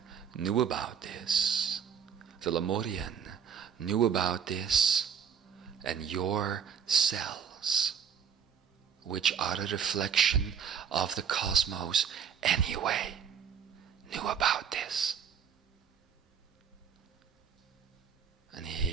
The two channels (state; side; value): quieter; left; 7.5 dB